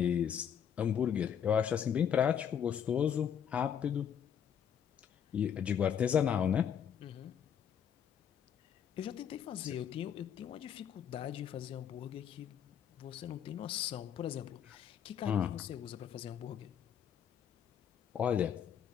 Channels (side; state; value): right; quieter; 8.5 dB